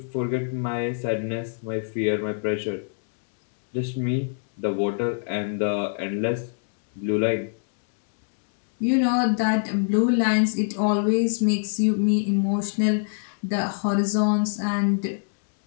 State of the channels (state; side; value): silent; right; digital silence